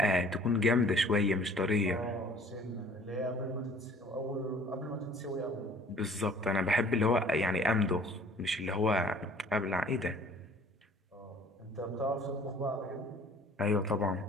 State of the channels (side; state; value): both; normal; correlation 0.52